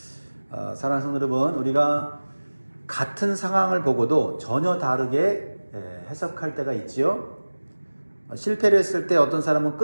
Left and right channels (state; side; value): inverted; both; correlation -1.00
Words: 사랑하는 성도 여러분, 우리가 같은 상황을 보고도 전혀 다르게 해석할 때가 있지요. 실패를 했을 때 어떤 사람은